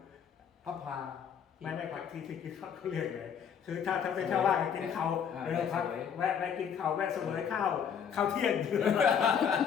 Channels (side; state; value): right; quieter; 7.7 dB